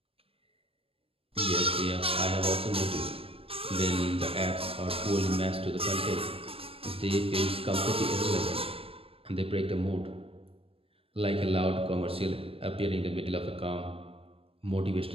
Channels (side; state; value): left; late; 0.28 ms